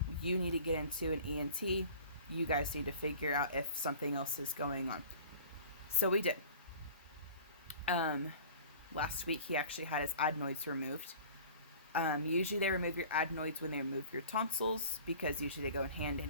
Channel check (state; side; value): inverted; both; correlation -0.45